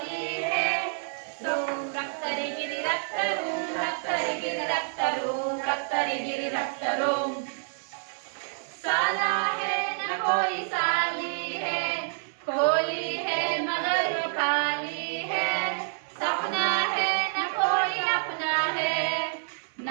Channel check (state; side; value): silent; left; 59 dB below the other